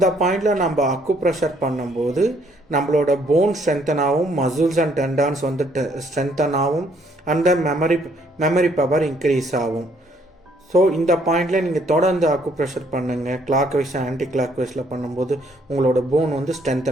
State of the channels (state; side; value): normal; both; correlation 0.66